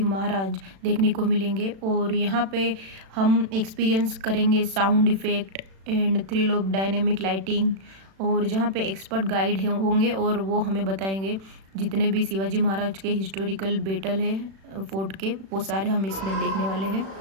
Maharaj देखने को मिलेंगे और यहाँ पे हम एक्सपीरियंस करेंगे sound effect end thrill of dynamic lighting, और जहाँ पे एक्सपर्ट गाइड होंगे और वो हमें बताएंगे जितने भी शिवाजी महाराज के हिस्टोरिकल बैटल है फोर्ट के, वो सारे हम इसमें देखने वाले हैं।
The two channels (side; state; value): left; late; 36 ms